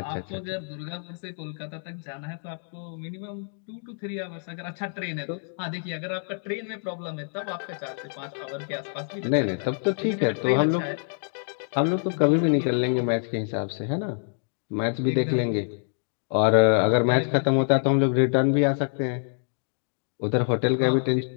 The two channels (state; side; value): silent; right; digital silence